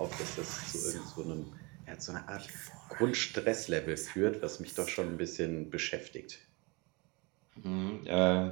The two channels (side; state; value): left; quieter; 27.8 dB